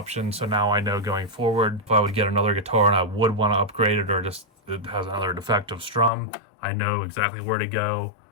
so now I know going forward, if I would get another guitar and I would want to upgrade it, or just it has another defective strum, I know exactly where to go,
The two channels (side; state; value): right; drops out; at 6.1 s